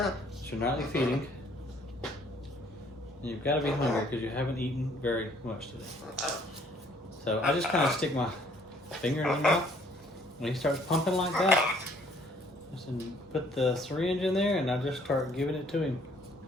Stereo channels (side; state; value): both; normal; correlation 0.61